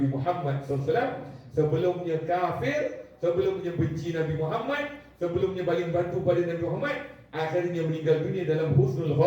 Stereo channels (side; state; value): both; identical; correlation 1.00